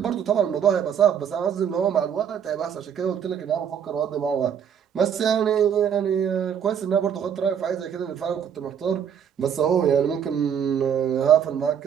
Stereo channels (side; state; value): left; quieter; 8.2 dB